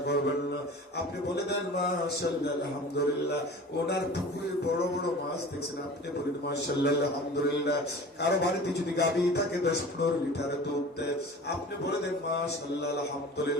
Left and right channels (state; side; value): normal; both; correlation 0.39